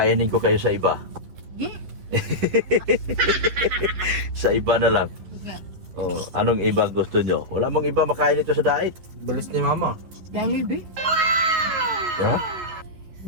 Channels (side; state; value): left; late; 11 ms